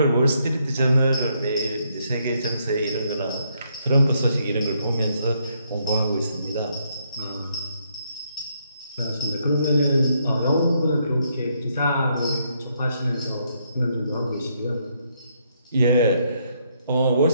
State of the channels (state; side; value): inverted; both; correlation -0.74